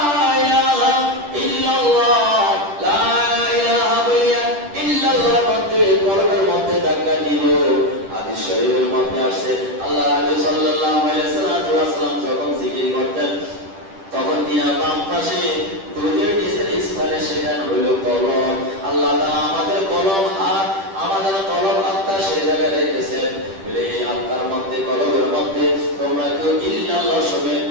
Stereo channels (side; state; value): left; late; 10 ms